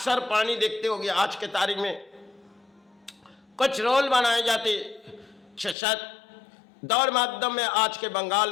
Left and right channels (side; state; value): right; drops out; at 5.8 s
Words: पानी देखते होंगे, आज के तारीख में कुछ रोल बनाए जाते, शायद दौर माध्यम में आज के बंगाल